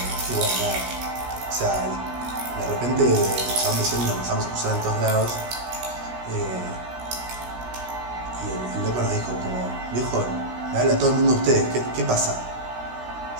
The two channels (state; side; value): late; left; 16 ms